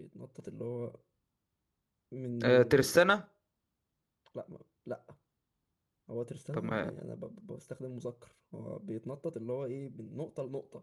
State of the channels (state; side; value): identical; both; correlation 1.00